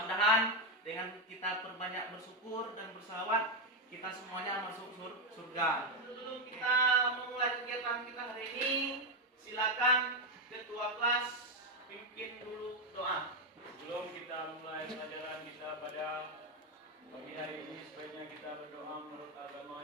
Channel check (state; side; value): normal; both; correlation 0.05